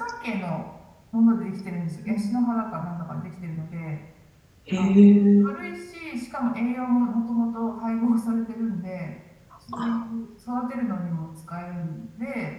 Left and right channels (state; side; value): identical; both; correlation 1.00